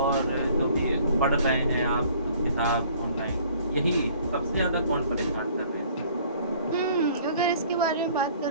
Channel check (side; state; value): both; inverted; correlation -0.55